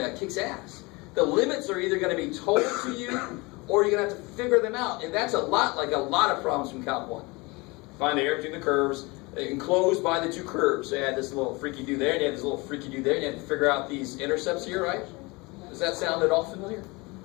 It kicks ass. The limits are either going to be told to you, or you're going to have to figure them out. And that's a lot like a lot of problems from Calc 1. Find the area between the curves, enclosed by the two curves. So you had this little freaky-do there, and you had this little freaky-do there, and you had to figure out these intercepts here, right? Does that sound at all familiar?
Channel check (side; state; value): right; quieter; 25.3 dB